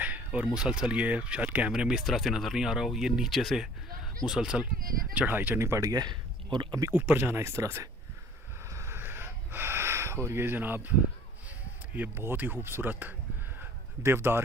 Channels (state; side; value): normal; both; correlation 0.51